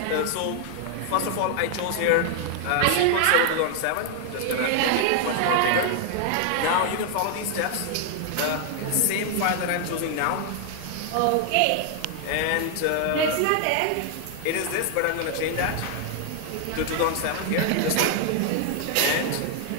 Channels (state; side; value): different; both; correlation 0.00